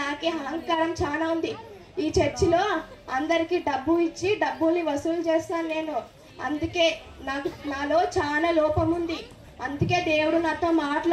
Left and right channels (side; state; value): both; identical; correlation 1.00